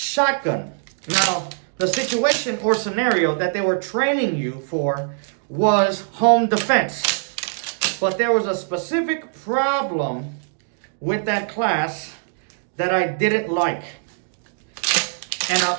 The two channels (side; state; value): left; silent; digital silence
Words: Now, the situation or scenario that they were training you for was home defense. But there was a specific problem with that class that I didn't like.